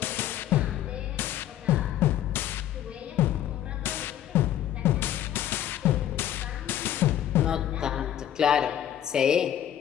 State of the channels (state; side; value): quieter; right; 11.4 dB